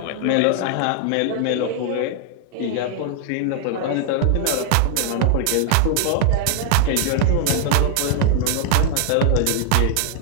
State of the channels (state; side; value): different; both; correlation 0.00